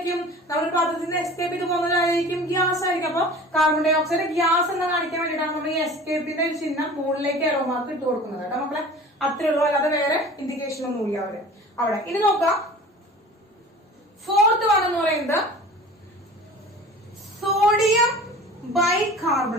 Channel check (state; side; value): normal; both; correlation 0.41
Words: നമ്മൾ പാത്രത്തിൽ നിന്ന് എസ്കേപ്പ് ചെയ്ത് പോകുന്നവരായിരിക്കും ഗ്യാസ് ആയിരിക്കും. അപ്പൊ കാർബൺ ഡൈ ഓക്സൈഡ് ഗ്യാസ് എന്ന് കാണിക്കാൻ വേണ്ടിയിട്ടാണ് നമ്മൾ ഈ എസ്കേപ്പിന്റെ ഒരു ചിഹ്നം മുകളിലേക്ക് എറോ മാർക്ക് ഇട്ട് കൊടുക്കുന്നത് കേട്ടോ മക്കളെ. അത്രേ ഉള്ളൂ. അല്ലാതെ വേറെ ഇൻഡിക്കേഷൻ ഒന്നും ഇല്ല അവിടെ. ഇനി നോക്കാം. ഫോർത്ത് വൺ എന്ന് പറയുന്നത് സോഡിയം